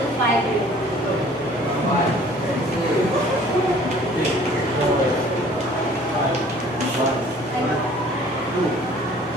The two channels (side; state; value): both; normal; correlation 0.52